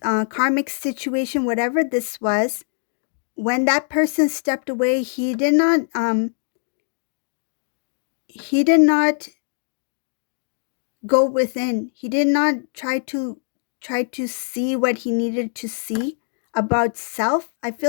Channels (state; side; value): silent; right; digital silence